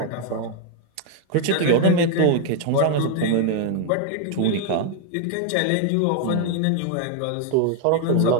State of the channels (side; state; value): both; different; correlation 0.00